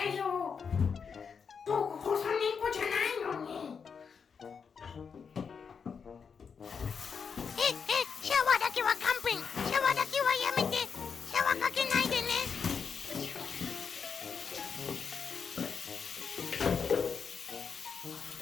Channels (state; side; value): quieter; right; 6.1 dB